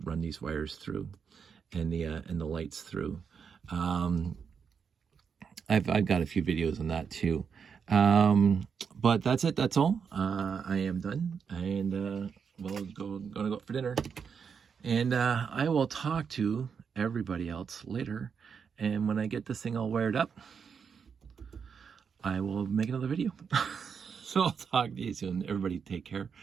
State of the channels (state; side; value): quieter; left; 6.5 dB